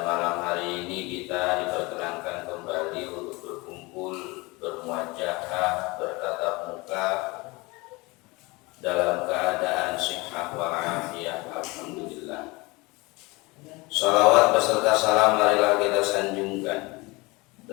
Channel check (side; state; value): right; quieter; 24.4 dB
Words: malam hari ini kita diperkenankan kembali untuk berkumpul, bermuajahah, bertatap muka dalam keadaan sihah wal afiyah. Alhamdulillah. Salawat beserta salam marilah kita sanjungkan